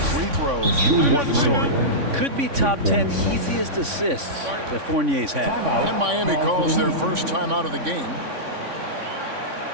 free throws were the story. Could be top 10 easiest assists that Fournier's had. And Miami calls their first time out of the game.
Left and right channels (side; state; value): left; late; 3.5 ms